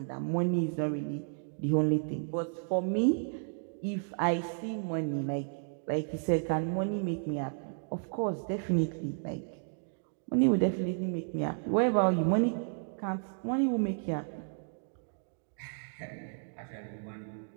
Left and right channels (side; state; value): left; silent; digital silence